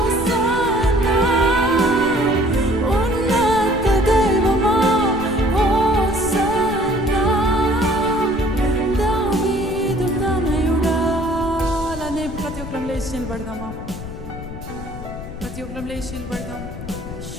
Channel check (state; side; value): noise; left; rumble, 11 dB below the sound